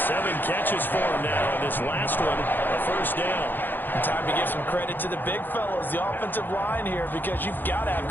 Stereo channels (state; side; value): late; right; 0.092 ms